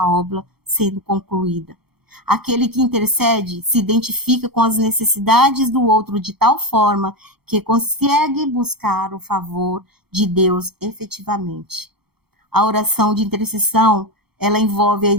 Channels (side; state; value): left; late; 0.96 ms